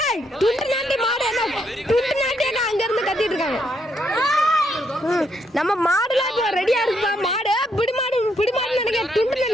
ஏய் துண்டு நாண்டி மாடு என்ன துண்டு நாண்டி என்ன அங்க இருந்து கத்திட்டு இருக்காங்க. நம்ம மாடுல இப்ப ரெடியா இருக்குப்பா. மாடு பிடி மாடு நினைக்க துண்டு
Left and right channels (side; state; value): both; normal; correlation 0.75